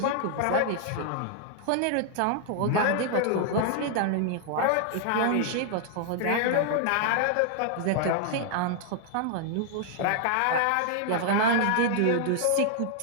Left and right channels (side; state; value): both; different; correlation 0.00